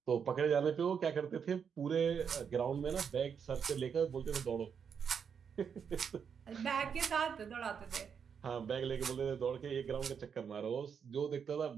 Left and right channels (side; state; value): left; quieter; 7.0 dB